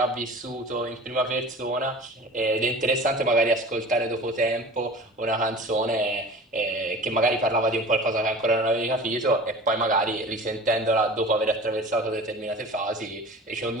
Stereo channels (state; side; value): normal; both; correlation 0.40